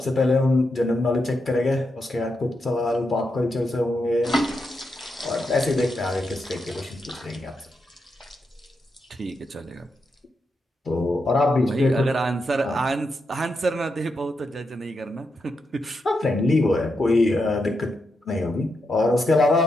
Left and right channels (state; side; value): normal; both; correlation 0.84